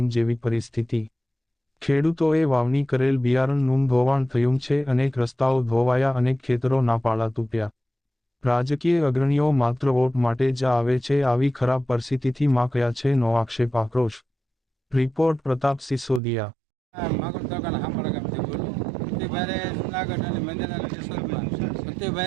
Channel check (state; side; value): drops out; left; at 16.2 s